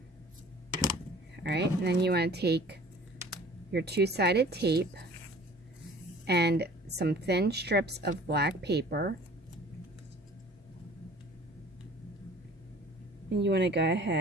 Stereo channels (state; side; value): normal; both; correlation 0.48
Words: Alright, and then you want to take your two-sided tape and some thin strips of black paper, and you want to go